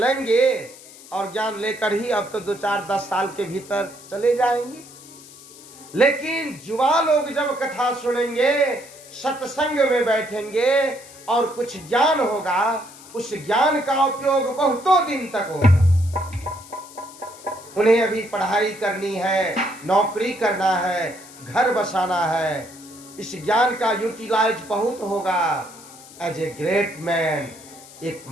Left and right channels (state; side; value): noise; left; hiss, 19 dB below the sound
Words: और ज्ञान लेकर ही अब तो 2-4-10 साल के भीतर चले जाएंगे। लेकिन युवा लोग जब कथा सुनेंगे, सत्संग में बैठेंगे और कुछ ज्ञान होगा, उस ज्ञान का उपयोग बहुतों दिन तक होगा। उन्हें अभी पढ़ाई करनी है, नौकरी करना है, घर बसाना है, इस ज्ञान का यूटिलाइज बहुत होगा। एज ए ग्रेट मैन, एक